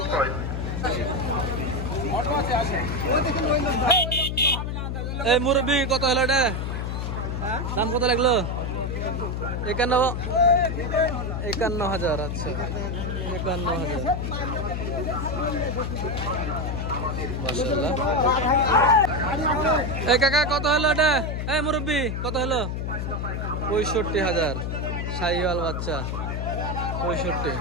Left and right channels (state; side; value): noise; left; hum, 2 dB below the sound